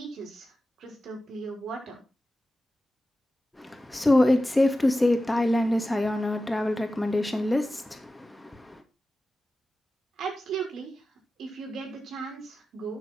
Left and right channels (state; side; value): normal; both; correlation 0.94